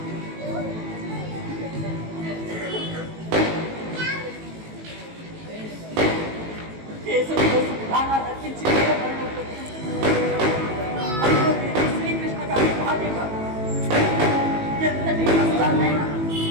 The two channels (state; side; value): late; left; 18 ms